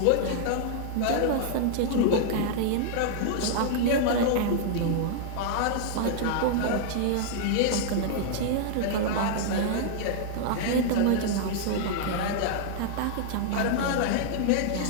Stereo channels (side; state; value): both; different; correlation -0.01